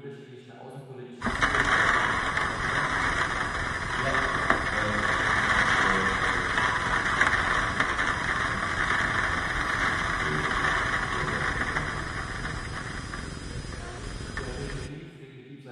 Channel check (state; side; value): identical; both; correlation 1.00